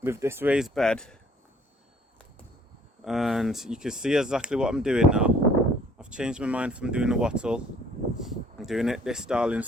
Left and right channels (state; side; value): normal; both; correlation 0.57